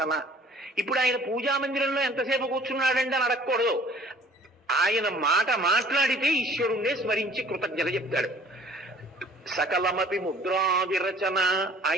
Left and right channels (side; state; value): both; normal; correlation 0.52